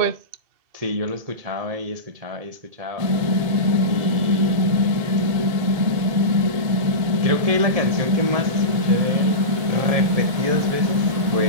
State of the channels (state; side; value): late; left; 1.7 ms